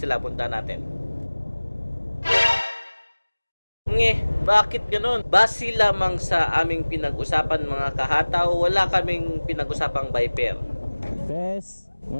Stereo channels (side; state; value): both; inverted; correlation -1.00